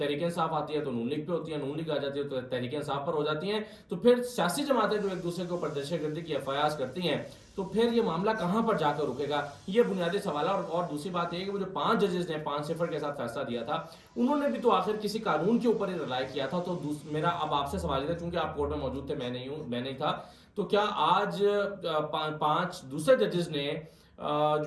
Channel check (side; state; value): both; identical; correlation 1.00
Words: انصاف آتی ہے تو نون لیگ پہ ہوتی ہے, نون لیگ آ جاتی ہے تو تحریک انصاف پر ہو جاتی ہیں, تو پھر سیاسی جماعتیں جو ایک دوسرے کے اوپر دہشت گردی کی ایف آئی آرز کرتی ہیں تو پھر یہ معاملہ کہاں پر جا کر رکے گا, یہ بنیادی سوال ہے. اور دوسری بات یہ ہے کہ وہ جو 5 ججز نے 5-0 کے ساتھ فیصلہ دیا تھا, انہوں نے بھی تو آخر کسی قانون کے اوپر ہی رائے کیا تھا. تو میرا اب آپ سے سوال ہے, چونکہ آپ کورٹ میں موجود تھے, میں نہیں تھا, تو کیا آج 5 دوسرے ججز نے